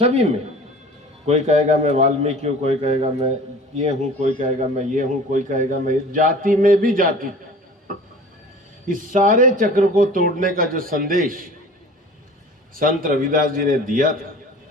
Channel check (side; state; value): both; normal; correlation 0.43